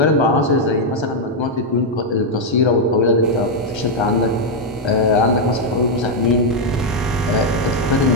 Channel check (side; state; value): both; normal; correlation 0.00